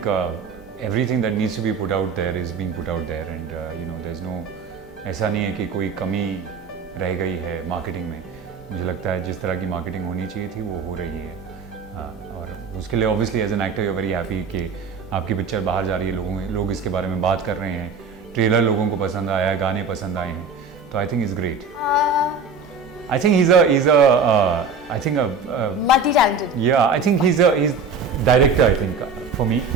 everything that needs to be put out there is being put out there, and there's no, ऐसा नहीं है कि कोई कमी रह गई है marketing में। मुझे लगता है जिस तरह की मार्केटिंग होनी चाहिए थी वो हो रही है, और उसके लिए obviously as an actor you very happy कि आपकी पिक्चर बाहर जा रही है, लोग इसके बारे में बात कर रहे हैं, ट्रेलर लोगों को पसंद आया है, गाने पसंद आए हैं, तो I think is great. I think he's multi talented. Yeah, I think he's director, I think, for me,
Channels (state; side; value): quieter; left; 4.5 dB